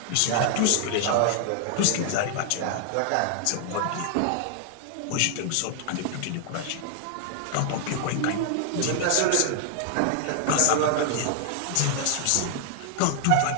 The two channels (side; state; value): both; different; correlation 0.00